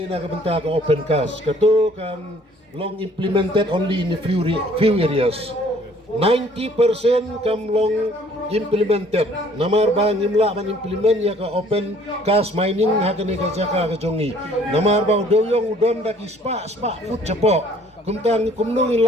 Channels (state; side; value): normal; both; correlation 0.58